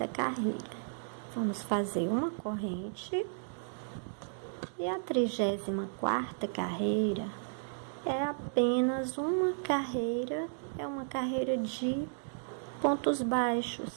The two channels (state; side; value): silent; left; digital silence